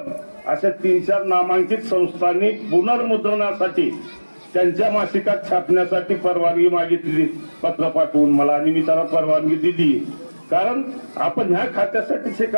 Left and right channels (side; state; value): both; inverted; correlation -1.00